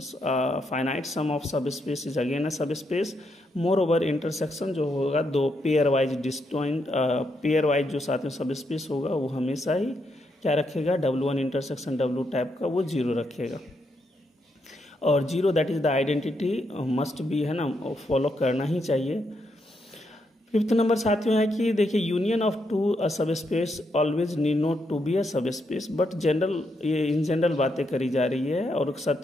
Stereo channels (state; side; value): normal; both; correlation 0.79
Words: फाइनाइट सम ऑफ सब स्पेस इज अगेन अ सब स्पेस। मोर ओवर इंटरसेक्शन जो होगा दो पेयर वाइज जो साथियों सब स्पेस होगा वो हमेशा ही क्या रखेगा, W1 इंटरसेक्शन W टाइप का वो 0 रखेगा। और 0 that is the identity must be, है ना, फॉलो करना ही चाहिए। फिफ्थ नंबर साथियों है कि देखिए union of two subspace always need not to be a subspace, but ये इन जनरल बातें करी जा रही है। और